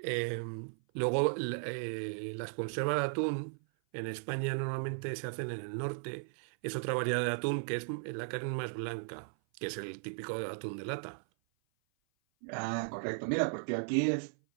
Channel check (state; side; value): silent; left; 54 dB below the other